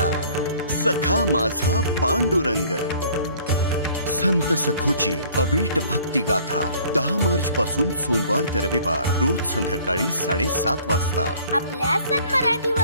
सखा माझा पांडुरंग. संत सखूची अवीट भक्ती गाथा 10 मार्च पासून सोमवार ते रविवार रोज संध्याकाळी 7:30 वाजता आपल्या सन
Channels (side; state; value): both; inverted; correlation -0.54